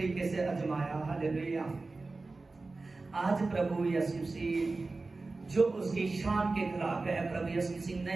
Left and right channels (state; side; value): quieter; left; 3.6 dB